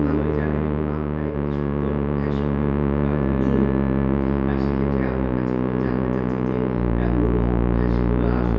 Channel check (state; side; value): identical; both; correlation 1.00